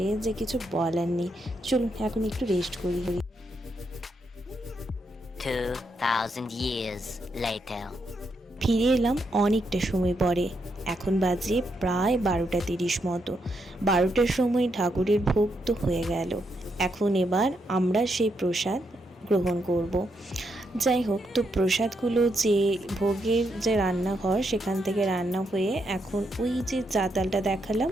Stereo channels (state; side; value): normal; both; correlation 0.80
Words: যে কিছু বলার নেই। চলুন এখন একটু রেস্ট করি। 2000 years later. ফিরে এলাম অনেকটা সময় পরে। এখন বাজে প্রায় 12:30 মতো। 12টার সময় ঠাকুরের ভোগ তো হয়ে গেল। এখন এবার আমরা সেই প্রসাদ গ্রহণ করব। যাই হোক, তো প্রসাদগুলো যে ভোগের যে রান্নাঘর সেখান থেকে রান্না হয়ে এখন ওই যে চাতালটা দেখালাম